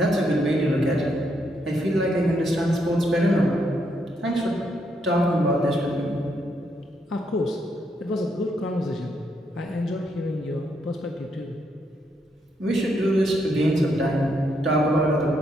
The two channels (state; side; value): normal; both; correlation 0.77